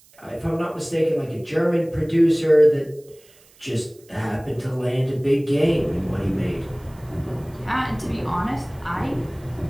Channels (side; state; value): right; noise; hiss, 28 dB below the sound